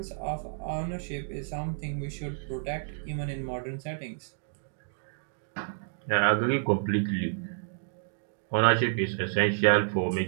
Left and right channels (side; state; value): left; silent; digital silence